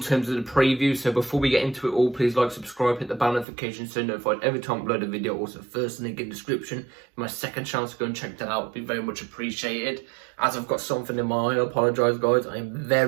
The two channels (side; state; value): left; drops out; at 3.5 s